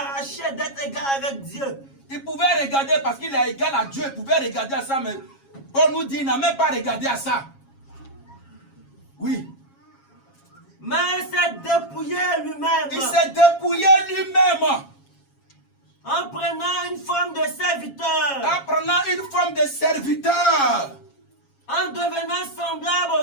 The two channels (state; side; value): late; right; 7.3 ms